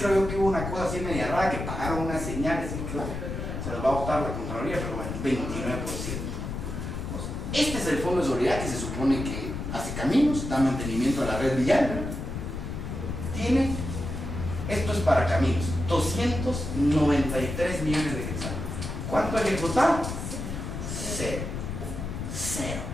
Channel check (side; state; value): left; noise; rumble, 5 dB below the sound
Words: yo que hubo una cosa así media rara, que pagaron unas señales, y creo que se los va a votar la Contraloría, pero bueno, 29%. Pues, este es el Fondo de Solidaridad que se supone que hace caminos, da mantenimiento a la red vial, ¿verdad? Tiene, esto es para caminos, 293 millones de quetzales. ¿Cuánto ha ejecutado? Cero.